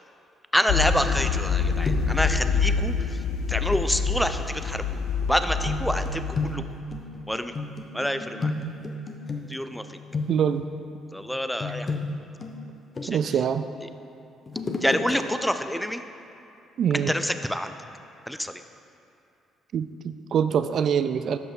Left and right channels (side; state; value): both; normal; correlation 0.71